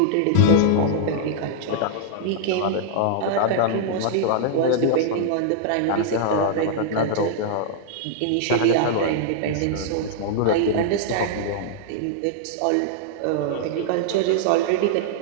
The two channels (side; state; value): both; different; correlation -0.01